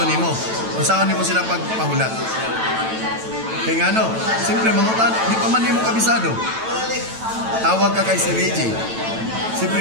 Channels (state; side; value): late; left; 9.0 ms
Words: nimo. Unsaon nimo sila pagpahulat? Kaya nga no, siyempre mangutan, di pa man nimo kabisado. Tawag ka kay Sir Reggie.